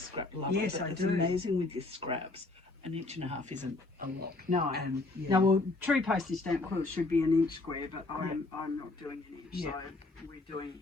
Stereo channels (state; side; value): quieter; right; 3.2 dB